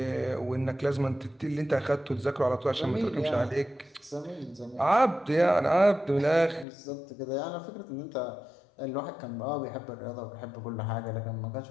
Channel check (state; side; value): drops out; right; at 6.7 s